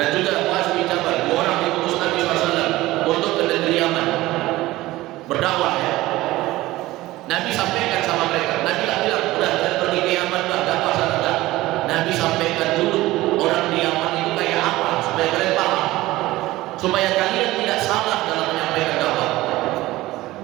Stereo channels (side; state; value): left; quieter; 17.8 dB